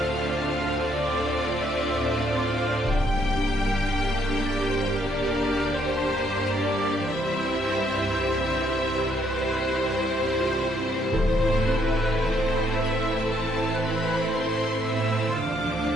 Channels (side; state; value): both; normal; correlation 0.71